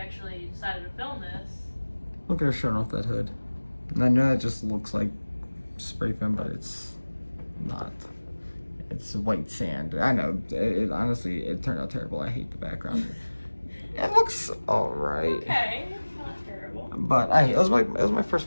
decided to film this. Look at her showing off that hood. And I know it just looks like spray foam, but it's not. It's white sand. I know. Honestly, it turned out terrible. I hate the background. It looks alright. Okay, it's not terrible. But it was my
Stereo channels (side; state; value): both; inverted; correlation -1.00